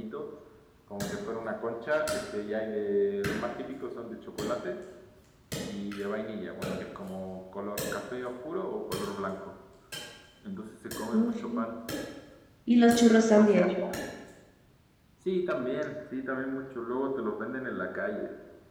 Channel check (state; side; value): identical; both; correlation 1.00